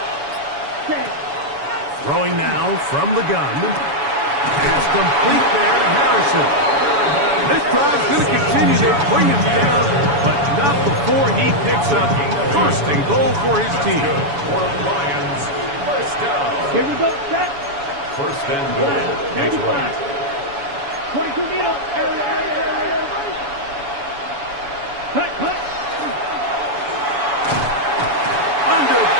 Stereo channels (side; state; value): left; late; 7.1 ms